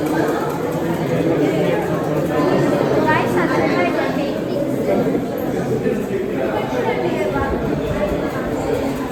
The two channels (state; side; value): identical; both; correlation 1.00